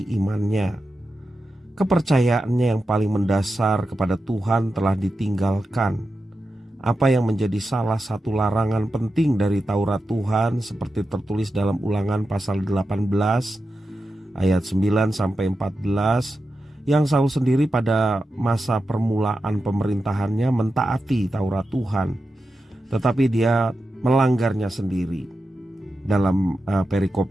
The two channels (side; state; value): both; normal; correlation 0.90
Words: imannya. Kepercayaannya yang paling mendasar kepada Tuhan telah ditinggalkan. Apa yang menjadi salah satu larangan penting dari Taurat Tuhan seperti tertulis dalam Ulangan pasal 18 ayat 9 sampai 14 yang Saul sendiri pada masa permulaan pemerintahannya mentaati Taurat Tuhan, tetapi dia melanggarnya sendiri dalam perikop